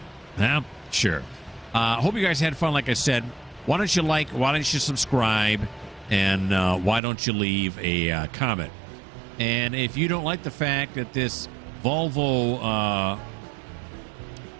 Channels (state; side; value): drops out; left; at 7.0 s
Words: Huh? Sure. Hope you guys had fun. Like I said, why don't you like? Why don't you subscribe? And why don't you leave a comment? And if you don't like the fact that this Volvo,